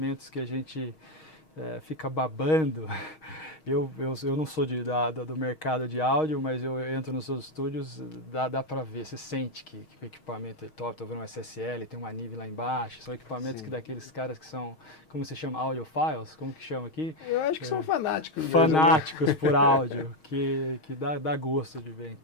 que a gente fica babando. Eu não sou do mercado de áudio, mas eu entro nos seus estúdios, dá para ver, você sente que o equipamento é top. Estou vendo um SSL, tem uma NIV lá embaixo, são equipamentos que daqueles caras que são, como se chama, audiophiles, como que chama aqui? Eu acho que são fanáticos. Fanáticos por áudio, que dá gosto de ver.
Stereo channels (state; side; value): late; right; 6.4 ms